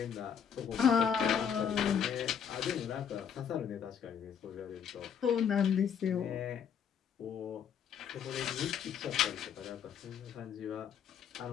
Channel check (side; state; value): right; quieter; 7.8 dB